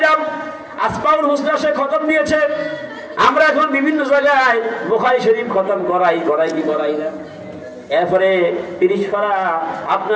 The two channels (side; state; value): both; identical; correlation 1.00